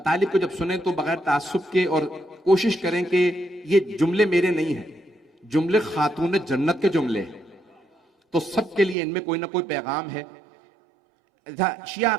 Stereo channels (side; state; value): left; drops out; at 9.0 s